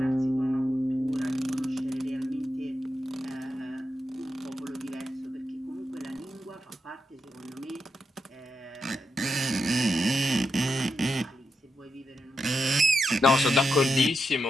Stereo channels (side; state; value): both; normal; correlation 0.86